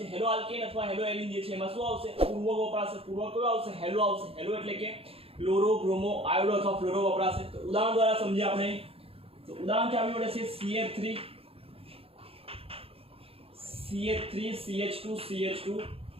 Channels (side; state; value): left; late; 0.28 ms